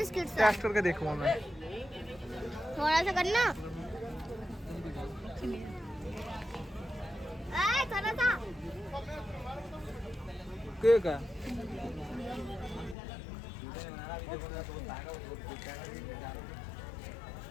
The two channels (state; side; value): drops out; right; at 13.0 s